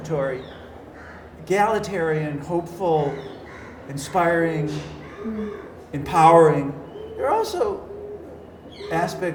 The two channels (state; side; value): identical; both; correlation 1.00